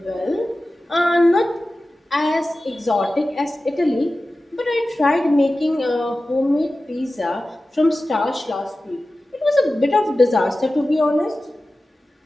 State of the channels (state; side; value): normal; both; correlation 0.95